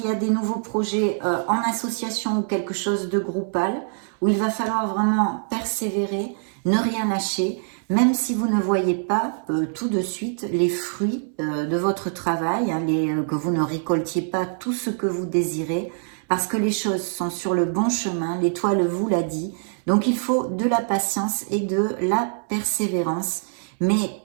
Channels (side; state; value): left; silent; 63 dB below the other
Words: y a des nouveaux projets en association ou quelque chose de groupal où il va falloir vraiment persévérer, ne rien lâcher, même si vous ne voyez pas tout de suite les fruits de votre travail, hein, que vous ne récoltiez pas tout ce que vous désirez, parce que les choses sont sur le bon chemin, l'étoile vous l'a dit. Donc il faut de la patience et de la persévérance, mais